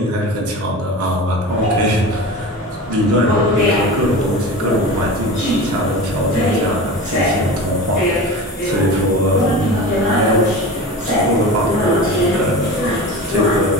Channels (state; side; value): normal; both; correlation 0.31